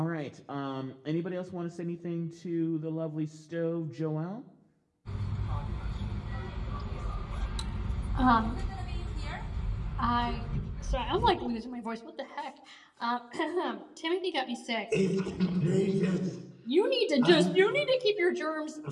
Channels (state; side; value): identical; both; correlation 1.00